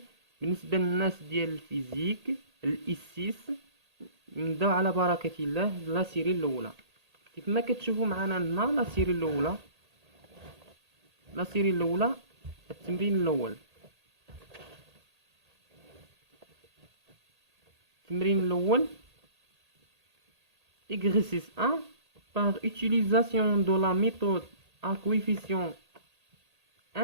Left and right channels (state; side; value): late; left; 1.8 ms